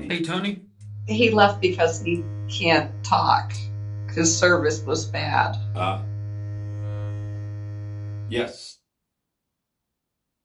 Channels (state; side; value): identical; both; correlation 1.00